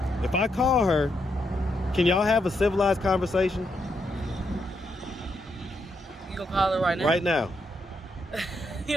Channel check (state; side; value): normal; both; correlation 0.80